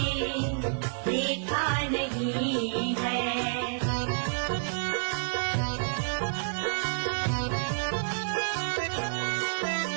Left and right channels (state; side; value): silent; left; 58 dB below the other